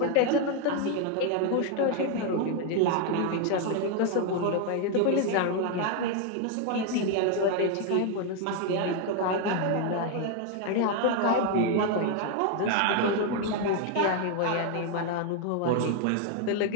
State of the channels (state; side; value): different; both; correlation 0.01